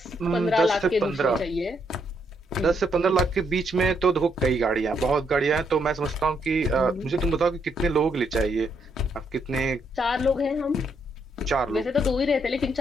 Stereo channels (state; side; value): normal; both; correlation 0.76